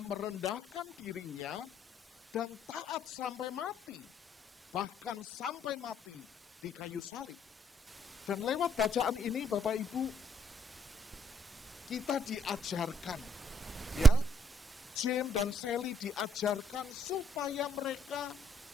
dirinya dan taat sampai mati, bahkan sampai mati di kayu salib. Dan lewat bacaan ini Bapak Ibu, kita diajarkan, ya, James dan Sally diajarkan supaya mereka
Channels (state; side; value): normal; both; correlation 0.71